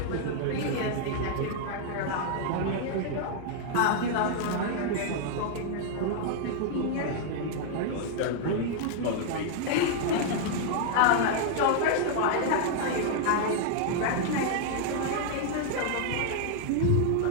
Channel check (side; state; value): both; different; correlation 0.00